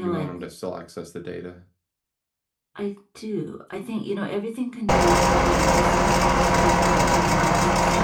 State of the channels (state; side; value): identical; both; correlation 1.00